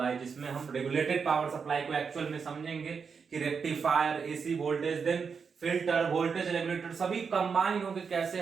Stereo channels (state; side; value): quieter; left; 5.8 dB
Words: जिसमें हम रेगुलेटेड पावर सप्लाई को एक्चुअल में समझेंगे कि rectifier, AC voltage, then filter, voltage regulator सभी कंबाइन होकर कैसे